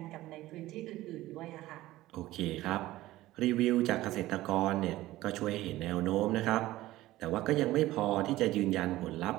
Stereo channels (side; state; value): left; quieter; 16.5 dB